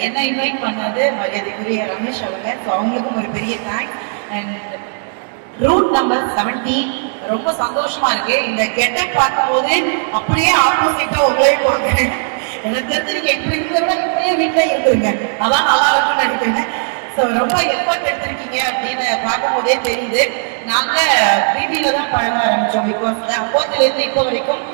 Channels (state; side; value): silent; left; 62 dB below the other